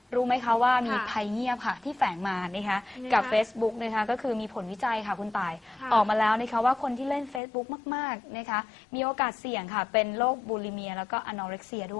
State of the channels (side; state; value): right; drops out; at 7.4 s